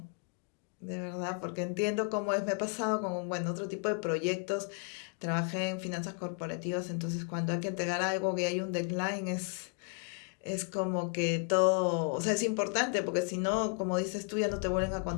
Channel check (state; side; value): quieter; right; 36.2 dB